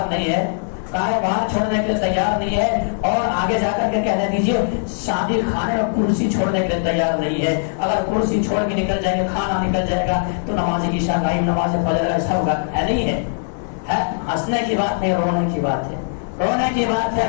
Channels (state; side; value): silent; right; digital silence